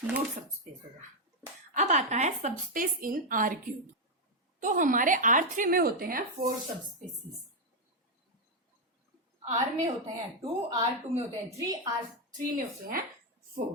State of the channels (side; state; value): both; normal; correlation 0.01